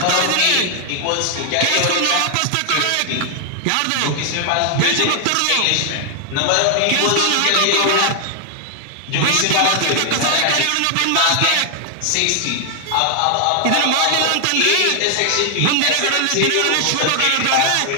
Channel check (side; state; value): both; different; correlation 0.00